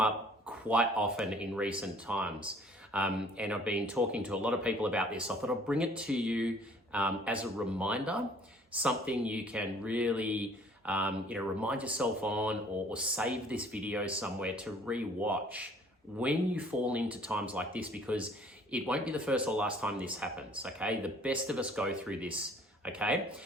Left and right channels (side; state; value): both; normal; correlation 0.56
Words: quite often in recent times. And I've been talking to a lot of people about this. So I thought I'll bring it to you as a reminder, something you can really remind yourself on or save this video somewhere to re-watch when you fall into times like this, because it won't be the first or last time this happens, okay? The best of us go through this, okay?